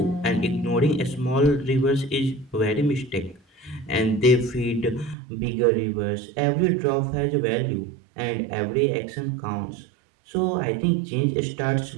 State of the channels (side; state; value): left; drops out; at 5.2 s